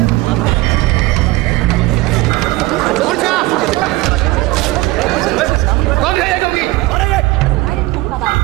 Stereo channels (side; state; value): left; quieter; 19.9 dB